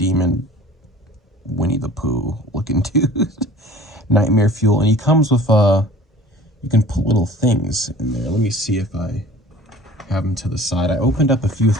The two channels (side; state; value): both; normal; correlation 0.46